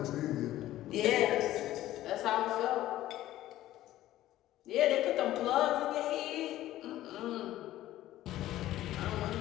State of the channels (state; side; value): quieter; right; 14.4 dB